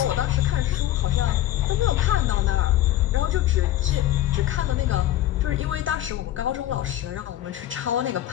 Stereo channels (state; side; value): quieter; right; 13.5 dB